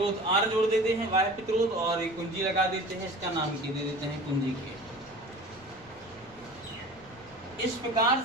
R जोड़ देते हैं, बाह्य प्रतिरोध, और एक कुंजी लगा देते हैं, इसका नाम दे देते हैं कुंजी के। इस प्रकार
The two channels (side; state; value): left; noise; rumble, 24 dB below the sound